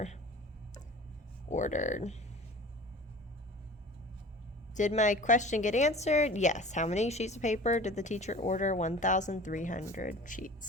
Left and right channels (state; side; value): normal; both; correlation 0.41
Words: ordered. Did my question get answered? Yes. How many sheets of paper did the teacher order? 1,300